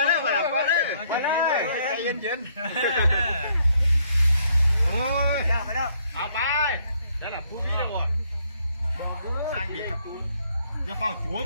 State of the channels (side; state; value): both; inverted; correlation -0.69